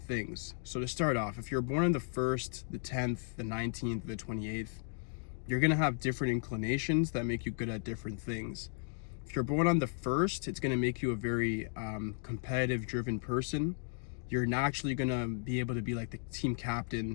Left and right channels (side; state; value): right; silent; 54 dB below the other